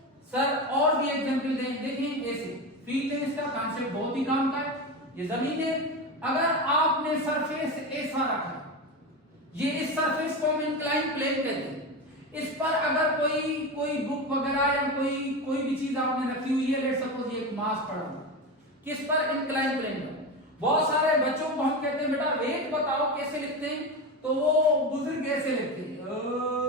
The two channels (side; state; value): both; normal; correlation 0.21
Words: सर और भी एग्जांपल दें, देखिए ऐसे फील्ड है, इसका कॉन्सेप्ट बहुत ही काम का है। ये जमीन है, अगर आपने सरफेस ऐसा रखा, ये इस सरफेस को हम इंक्लाइन प्लेन कहते हैं। इस पर अगर कोई बुक वगैरह या कोई भी चीज आपने रखी हुई है, लेट सपोज ये एक मास पड़ा हुआ, किस पर? इंक्लाइन प्लेन पर। बहुत सारे बच्चों को हम कहते हैं बेटा वेट बताओ कैसे लिखते हैं, तो वो बुजुर्ग ऐसे लिखते हैं